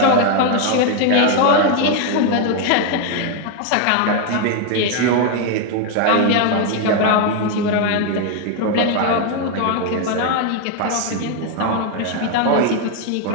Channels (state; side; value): different; both; correlation 0.01